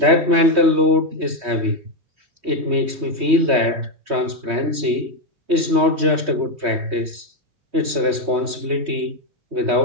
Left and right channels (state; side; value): late; left; 3.2 ms